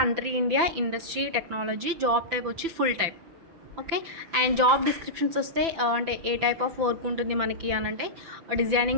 India, industry technology, job type వచ్చి full type. Okay, and job descriptions వస్తే అంటే ఏ టైప్ ఆఫ్ వర్క్ ఉంటుంది మనకి అని అంటే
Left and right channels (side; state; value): left; late; 6.0 ms